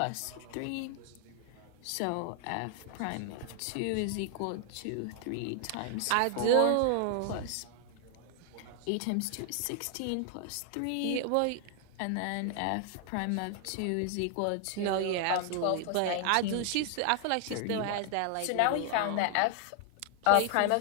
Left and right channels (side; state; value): both; different; correlation 0.00